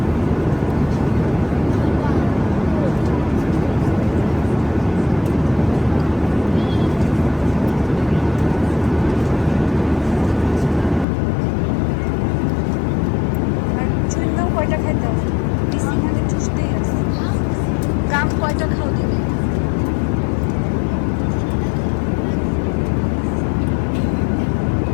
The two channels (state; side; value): drops out; right; at 11.1 s